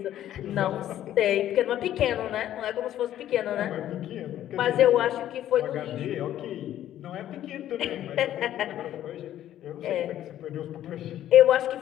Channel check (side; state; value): right; quieter; 12.1 dB